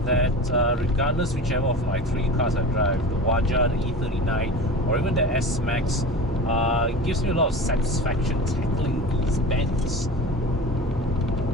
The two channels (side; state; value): both; normal; correlation 0.32